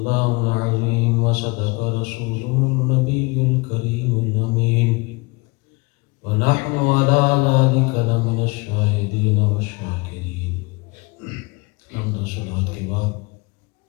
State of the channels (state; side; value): quieter; right; 26.4 dB